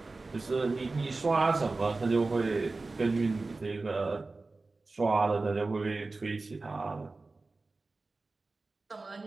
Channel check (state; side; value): quieter; left; 3.5 dB